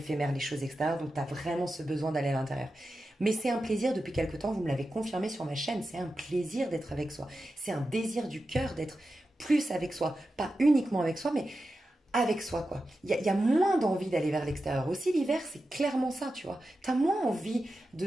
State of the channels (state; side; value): normal; both; correlation 0.91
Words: les choses extérieures, donc tu as vraiment ce besoin d'aller à l'intérieur. Mais c'est un plaisir depuis quelque temps, vous me l'avez confirmé sur ma chaîne, c'est un plaisir d'être avec soi. C'est un désir du cœur d'être plus avec soi. Pas uniquement avec soi, mais avec soi, quoi. Il y a moins d'envie d'aller vers l'extérieur. Aussi, l'hiver, c'est clairement ça, tu vois. Tu as moins envie